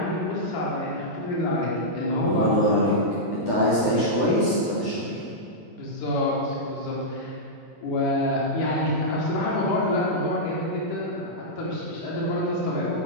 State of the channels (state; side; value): late; right; 10 ms